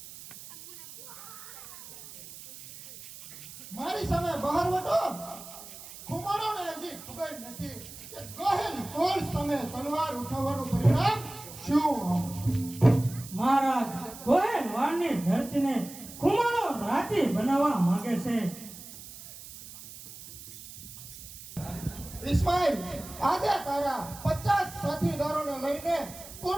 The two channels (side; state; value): right; noise; hiss, 15 dB below the sound